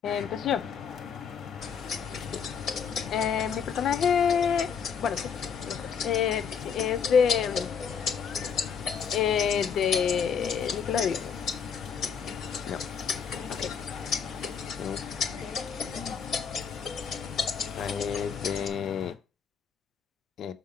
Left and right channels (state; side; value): quieter; right; 6.8 dB